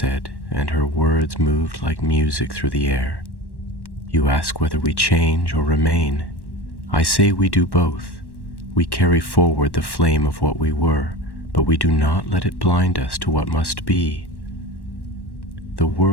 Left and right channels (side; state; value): right; late; 1.1 ms